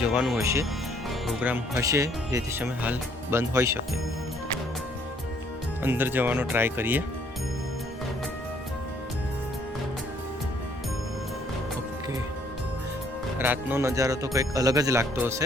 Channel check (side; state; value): both; normal; correlation 0.64